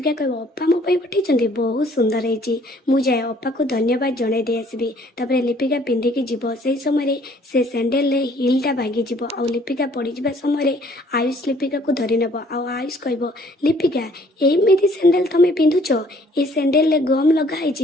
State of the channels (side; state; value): both; normal; correlation 0.59